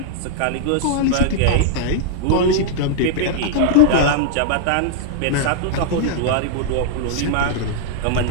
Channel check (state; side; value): different; both; correlation -0.01